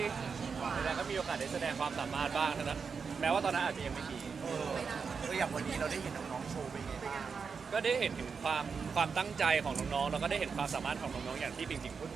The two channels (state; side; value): quieter; left; 5.6 dB